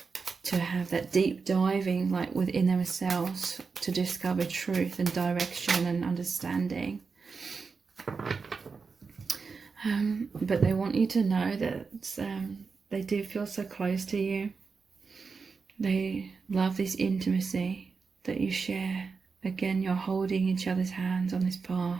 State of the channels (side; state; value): left; quieter; 4.9 dB